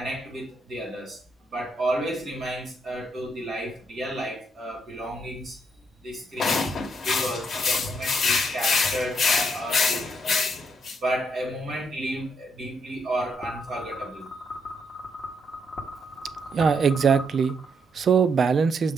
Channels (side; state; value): both; normal; correlation 0.76